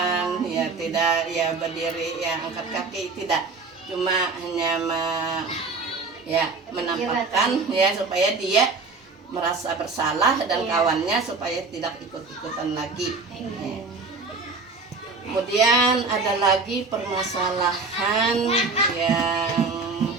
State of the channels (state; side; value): quieter; left; 4.1 dB